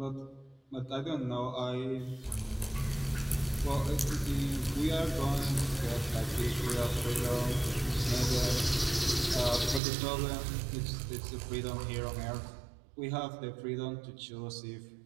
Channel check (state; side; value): drops out; left; at 9.8 s